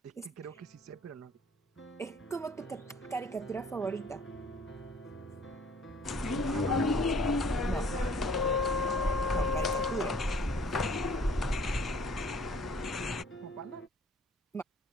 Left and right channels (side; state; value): both; normal; correlation 0.55